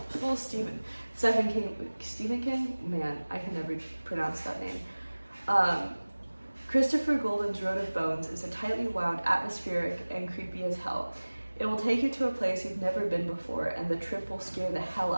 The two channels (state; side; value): inverted; both; correlation -1.00